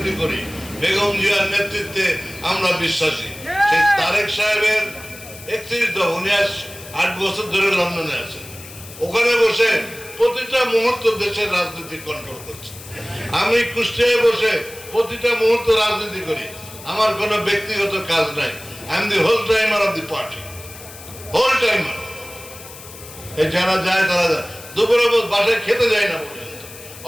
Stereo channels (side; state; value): left; noise; hiss, 16 dB below the sound